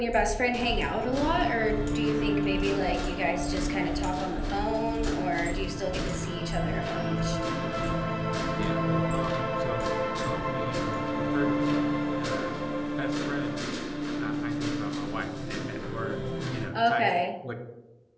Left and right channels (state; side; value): identical; both; correlation 1.00